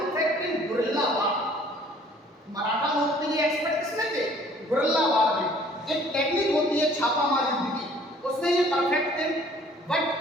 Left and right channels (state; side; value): normal; both; correlation 0.55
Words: इन गुरिल्ला वार। मराठा लोग के लिए एक्सपर्ट किसमें थे? गुरिल्ला वार में। एक टेक्निक होती है छापामार युद्ध की, उसमें ये परफेक्ट थे। But